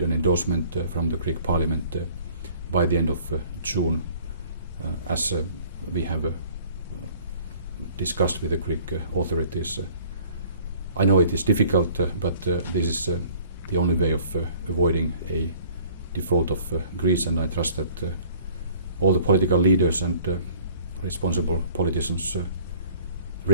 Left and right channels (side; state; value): both; inverted; correlation -0.52